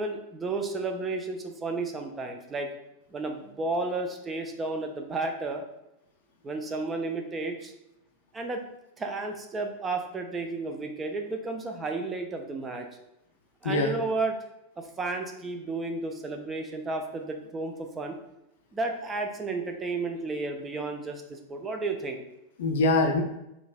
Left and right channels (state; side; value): normal; both; correlation 0.26